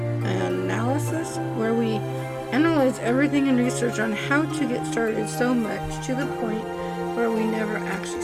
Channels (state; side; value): identical; both; correlation 1.00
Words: analysis, where we analyze everything and research on how to get started so much to the point where we never actually